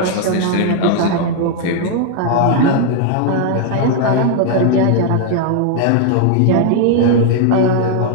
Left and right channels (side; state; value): both; different; correlation 0.00